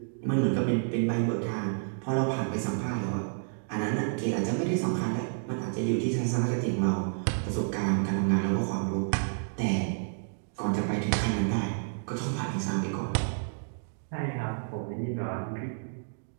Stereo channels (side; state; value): left; silent; digital silence